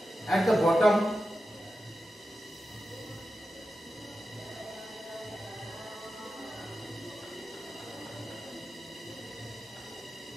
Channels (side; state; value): both; normal; correlation 0.91